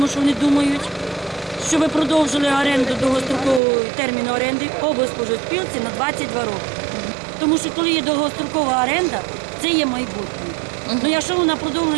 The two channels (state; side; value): drops out; left; at 3.6 s